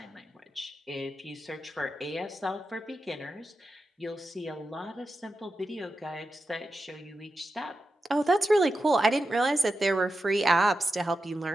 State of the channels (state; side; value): normal; both; correlation 0.90